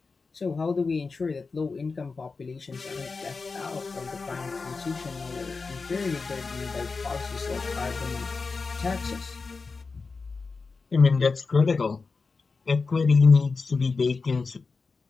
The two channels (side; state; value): right; quieter; 4.4 dB